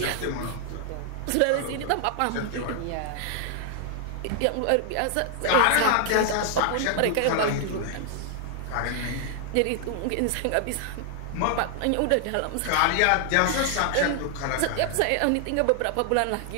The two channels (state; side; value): different; both; correlation 0.00